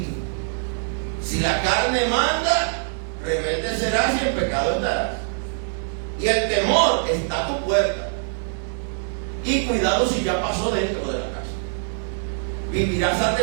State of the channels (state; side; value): silent; left; digital silence